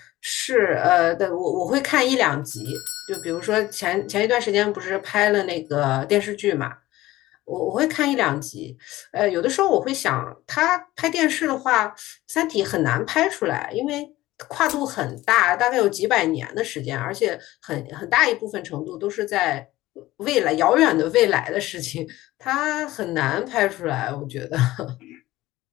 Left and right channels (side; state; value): right; quieter; 17.0 dB